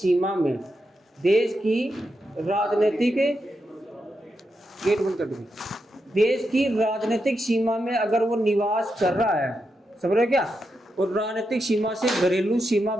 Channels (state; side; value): normal; both; correlation 0.86